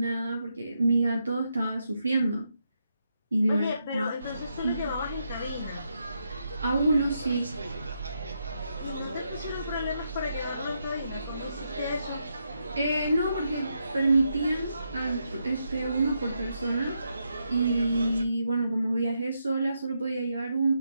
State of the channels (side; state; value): both; inverted; correlation -0.81